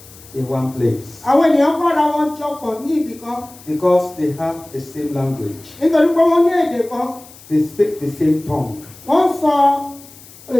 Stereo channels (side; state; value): left; noise; hiss, 21 dB below the sound